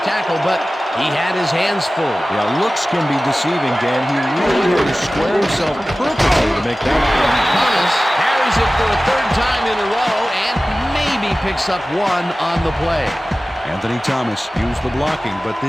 tackle, but he had his hands full. Yeah, looks can be deceiving, Dan. He really had to square himself perfectly to make that play. Thomas carries it for a third time in a row and maybe picks up one on the play. Anthony Thomas used the blocking, but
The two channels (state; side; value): normal; both; correlation 0.97